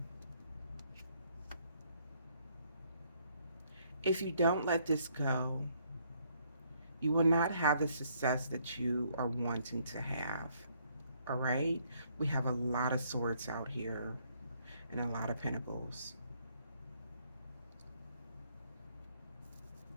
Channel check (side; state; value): both; inverted; correlation -0.68